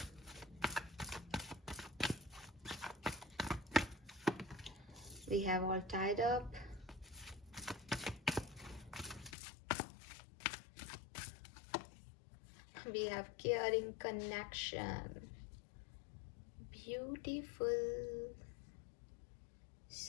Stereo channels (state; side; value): drops out; right; at 9.3 s